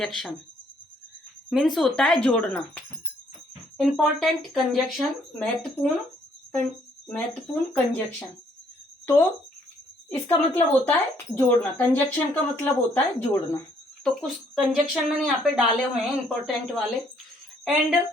मीन्स होता है जोड़ना। इम्पोर्टेंट कंजक्शन, महत्वपूर्ण कंजक्शन। तो इसका मतलब होता है जोड़ना। कंजक्शन का मतलब होता है जोड़ना। तो कुछ कंजक्शन मैंने यहाँ पे डाले हुए हैं इम्पोर्टेंट वाले।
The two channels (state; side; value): normal; both; correlation 0.66